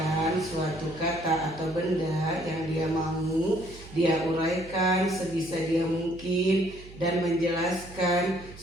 suatu kata atau benda yang dia mau, dia uraikan sebisa dia mungkin dan menjelaskan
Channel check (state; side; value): noise; right; hum, 18 dB below the sound